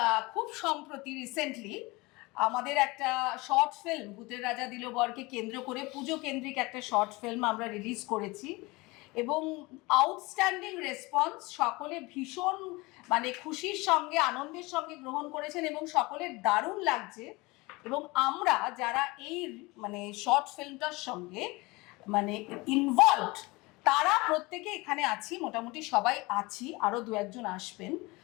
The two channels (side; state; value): right; quieter; 23.5 dB